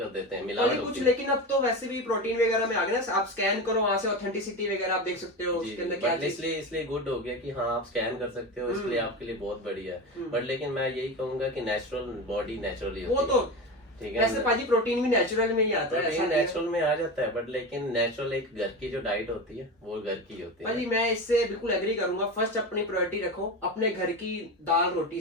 देते हैं, मिलावट कुछ। होती है। लेकिन अब तो वैसे भी प्रोटीन वगैरह में आ गए ना, आप स्कैन करो वहां से ऑथेंटिसिटी वगैरह आप देख सकते हो उसके अंदर क्या चीज। इसलिए गुड हो गया कि हाँ आप स्कैन कर सकते हो, इसलिए आपके लिए बहुत बढ़िया है। बट लेकिन मैं यही कहूंगा कि नेचुरल बॉडी नेचुरली वो होती तो है, ठीक है। वैसे पाजी प्रोटीन भी नेचुरल में ही आता है, प्रोटीन नेचुरल में आ जाता है, बट लेकिन नेचुरल एक घर की जो डाइट होती है वो घर की होती है। पाजी मैं इससे बिल्कुल एग्री करूंगा। फर्स्ट अपनी प्रायोरिटी रखो अपने घर की दाल रोटी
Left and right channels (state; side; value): normal; both; correlation 0.23